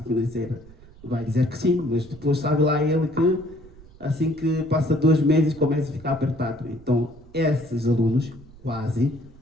financeira, vai dizer que sim, mas depois sabe lá ele que assim que passa 2 meses começa a ficar apertado. Então esses alunos, quase,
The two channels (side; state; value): right; noise; rumble, 22 dB below the sound